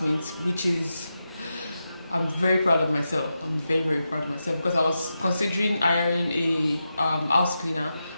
which is, I'm very proud of myself. I'm very, very proud of myself because I was considering hiring a house cleaner,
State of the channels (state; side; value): inverted; both; correlation -0.89